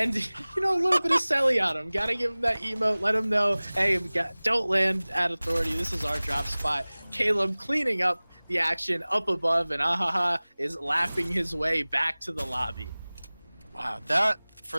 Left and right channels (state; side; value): inverted; both; correlation -1.00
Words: a little bit of Selly on him. Got to give him that emote. Let him know, hey, don't land at authority. This is our drop spot. Caleb cleaning up the action up above, and Ahaha is laughing his way back to the lobby. Wow, that